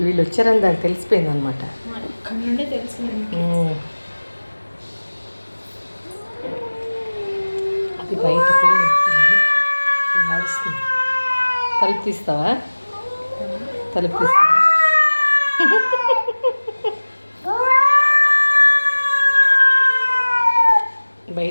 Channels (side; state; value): both; inverted; correlation -1.00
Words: వీళ్ళు వచ్చారని దానికి తెలిసిపోయింది అనమాట. అది బయట పిల్లి అరుస్తుంది. తలుపు తీస్తావా? తలుపు తీస్తావా?